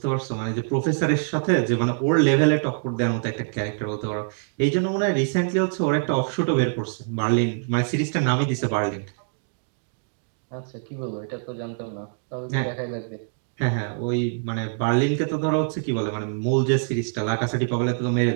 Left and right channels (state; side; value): silent; left; digital silence